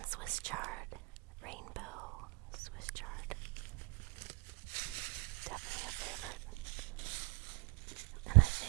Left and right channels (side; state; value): left; quieter; 27.6 dB